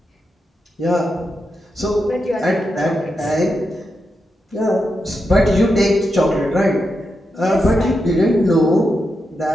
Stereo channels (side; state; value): both; normal; correlation 0.86